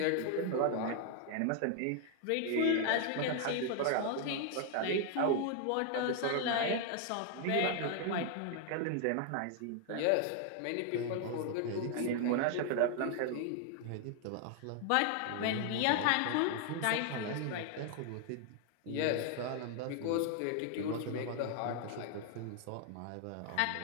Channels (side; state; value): both; different; correlation 0.00